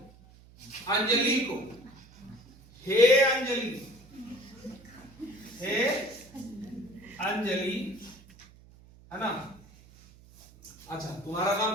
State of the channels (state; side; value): noise; right; hum, 24 dB below the sound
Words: अंजलि को। हे अंजलि, हे अंजलि, है ना। अच्छा, तुम्हारा